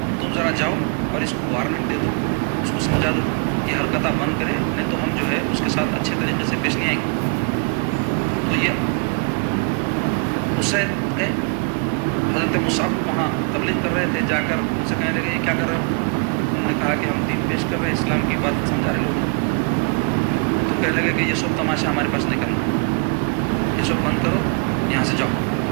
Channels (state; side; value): quieter; left; 38.0 dB